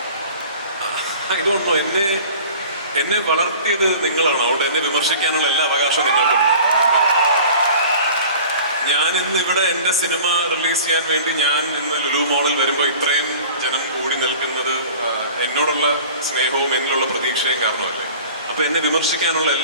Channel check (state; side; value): inverted; both; correlation -0.43